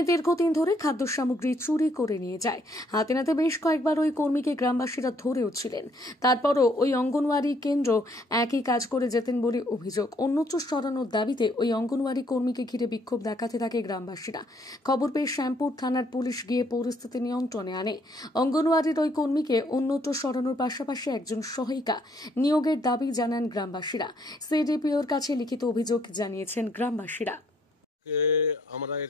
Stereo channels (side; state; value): both; normal; correlation 0.67